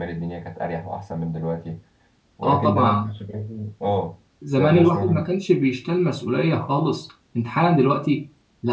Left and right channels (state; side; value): identical; both; correlation 1.00